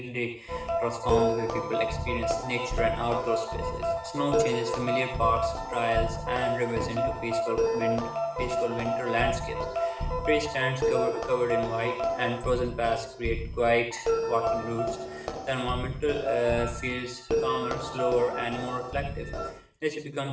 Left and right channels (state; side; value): identical; both; correlation 1.00